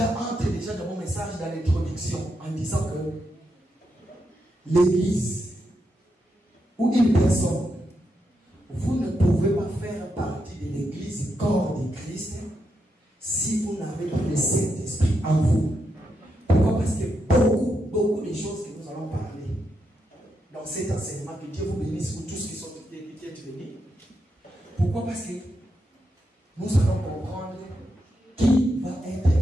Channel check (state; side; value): normal; both; correlation 0.83